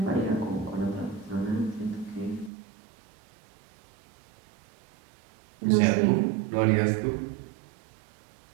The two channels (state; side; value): drops out; left; at 2.5 s